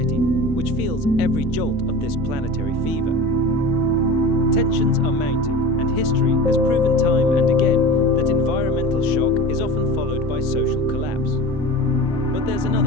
which feels every jolt of this planetary fever. Tensions are mounting, and history has proven time and again that environmental shock is often followed by social collapse. But there's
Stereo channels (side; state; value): both; normal; correlation 0.33